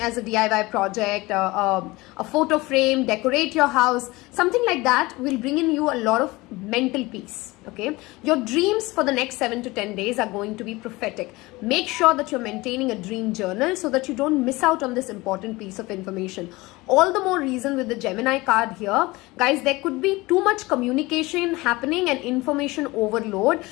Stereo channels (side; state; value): right; quieter; 21.5 dB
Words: a DIY project, a photo frame, decorate your house, something like that will bring in you a lot of mental peace. Okay, your dreams for the next 7 to 10 days are going to be prophetic. Make sure that you're maintaining a dream journal so that you don't miss out on this important piece of information. All the more reason with the Gemini card here, guys, there could be too much communication happening and information overload.